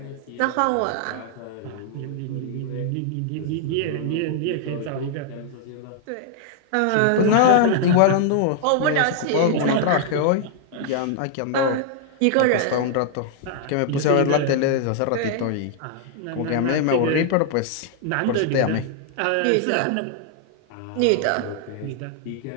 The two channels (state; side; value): different; both; correlation 0.00